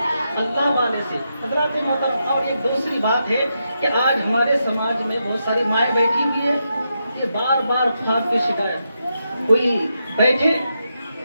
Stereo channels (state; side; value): inverted; both; correlation -0.84